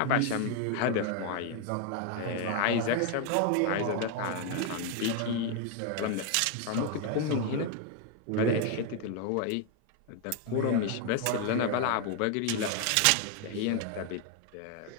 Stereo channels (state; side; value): different; both; correlation 0.01